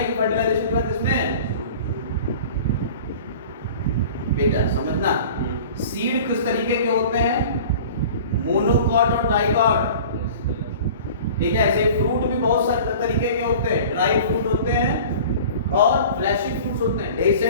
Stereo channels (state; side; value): inverted; both; correlation -0.42